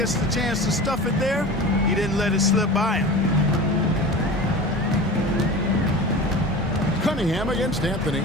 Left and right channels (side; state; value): both; normal; correlation 0.34